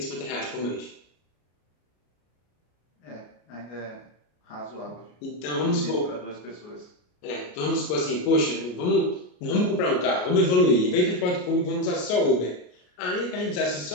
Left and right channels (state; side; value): late; right; 33 ms